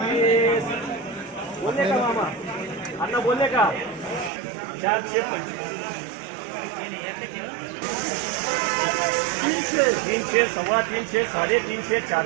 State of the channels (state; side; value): drops out; left; at 4.3 s